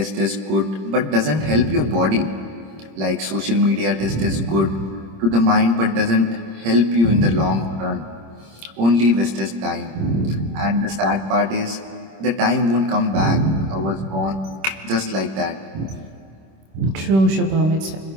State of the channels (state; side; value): late; left; 26 ms